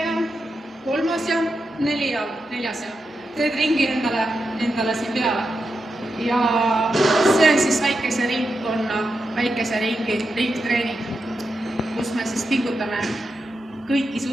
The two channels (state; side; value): normal; both; correlation 0.87